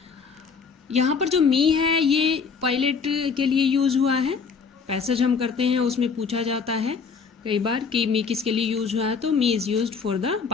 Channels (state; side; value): quieter; right; 5.6 dB